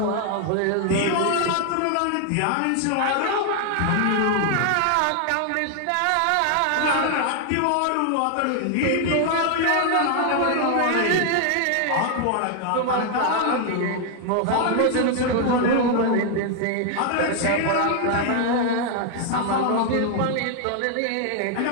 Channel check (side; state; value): both; different; correlation 0.00